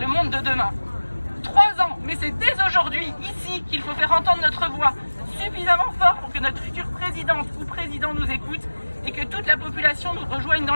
monde de demain. 3 ans, mais c'est dès aujourd'hui, ici, qu'il faut faire entendre notre voix suffisamment fort pour que notre future présidente ou président nous écoute et que toute la population nous rejoigne dans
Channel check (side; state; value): both; inverted; correlation -1.00